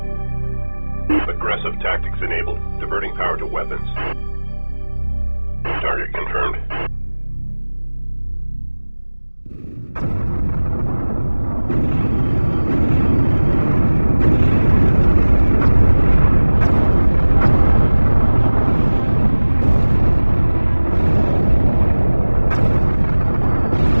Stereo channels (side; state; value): both; inverted; correlation -1.00